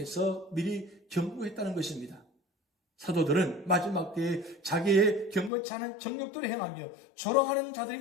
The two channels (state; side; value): drops out; right; at 5.5 s